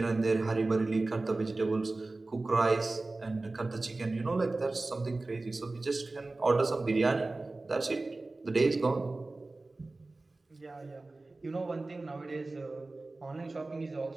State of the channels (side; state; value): left; quieter; 3.2 dB